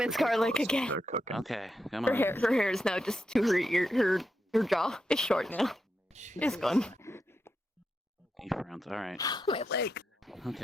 garlic again. They're cooking. Okay, come Her on. hair is now just to her ear. Her jaw is short now. It's gone. He frowns. All right. My leg.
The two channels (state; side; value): normal; both; correlation 0.85